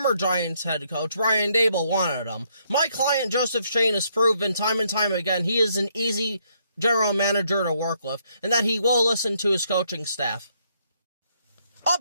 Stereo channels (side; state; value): both; inverted; correlation -0.72